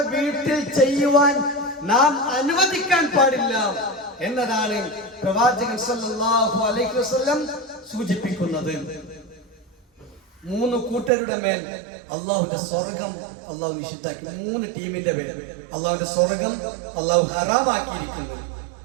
വീട്ടിൽ ചെയ്യുവാൻ നാം അനുവദിക്കാൻ പാടില്ല എന്നതാണ് പ്രവാചകൻ സല്ലല്ലാഹു അലൈഹി വസല്ലം സൂചിപ്പിക്കുന്നത്. 3 കൂട്ടരുടെ മേൽ അള്ളാഹുവിന്റെ സ്വർഗം അള്ളാഹു നിഷിദ്ധാക്കി. 3 ടീമിന്റെ മേൽ അള്ളാഹുവിന്റെ സ്വർഗം അള്ളാഹു ഹറാമാക്കിയിരിക്കുന്നത്.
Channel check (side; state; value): left; drops out; at 11.1 s